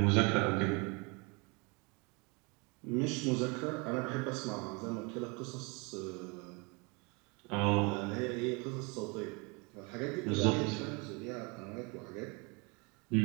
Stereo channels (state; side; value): quieter; left; 29.9 dB